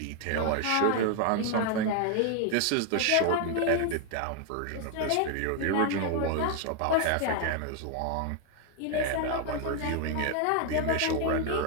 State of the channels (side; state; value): both; different; correlation 0.00